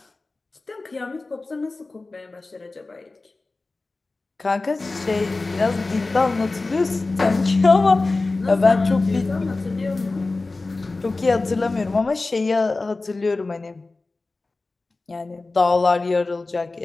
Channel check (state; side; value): quieter; right; 3.4 dB